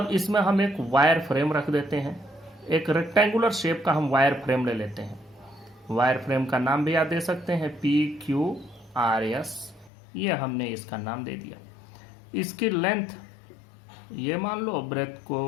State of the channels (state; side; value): drops out; right; at 9.9 s